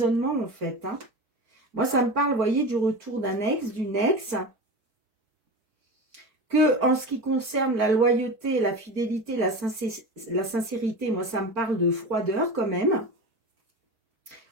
en fait. Hein. Moi, ça me parle, vous voyez, du retour d'un ex, d'une ex. Que en ce qui concerne la loyauté, la fidélité, la sincérité, moi, ça me parle de froideur quand même.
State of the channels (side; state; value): left; late; 4.7 ms